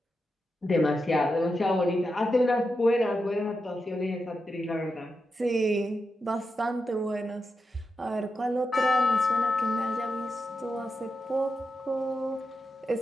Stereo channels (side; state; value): both; normal; correlation 0.88